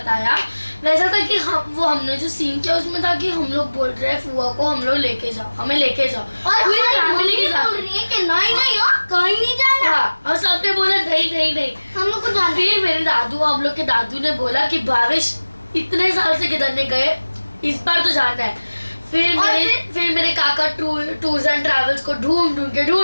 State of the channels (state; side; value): inverted; both; correlation -1.00